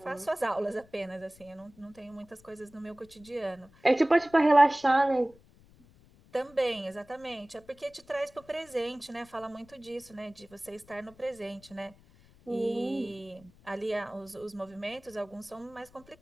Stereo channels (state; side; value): noise; left; rumble, 26 dB below the sound